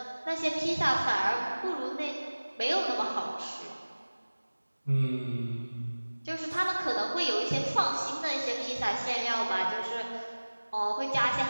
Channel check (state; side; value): inverted; both; correlation -1.00